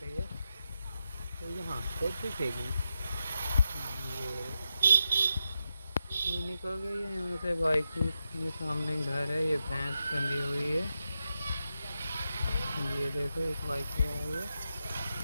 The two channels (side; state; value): both; inverted; correlation -0.86